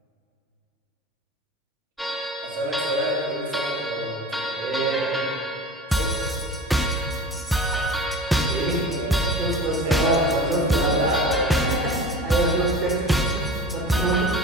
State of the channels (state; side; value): normal; both; correlation 0.36